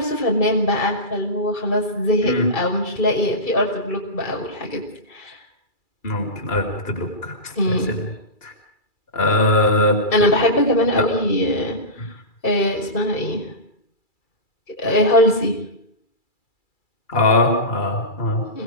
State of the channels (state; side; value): late; right; 2.3 ms